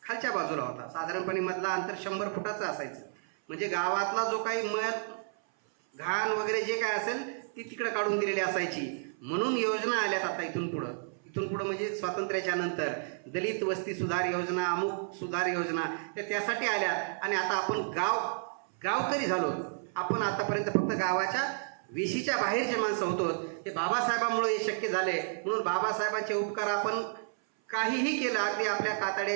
खालच्या बाजूला होता. साधारणपणे मधला अंतर 100 फुटाचं असायचं. म्हणजे गावातला जो काही मध घाण वगैरे जे काय असेल ती तिकडं काढून दिलेली असायची. म्हणून योजना आल्यात आता इथून पुढं म्हणजे स्वातंत्र्याच्या नंतर दलित वस्ती सुधार योजना, अमुक सुधार योजना त्यासाठी आल्यात. आणि आता आपण गावकरी झालो. आपण आतापर्यंत फक्त गावाच्या वेशीच्या बाहेरचे माणसं होतो. हे बाबासाहेबांमुळे हे शक्य झाले. म्हणून बाबासाहेबांचे उपकार आपण काहीही केलं, अगदी आपल्या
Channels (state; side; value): silent; left; 57 dB below the other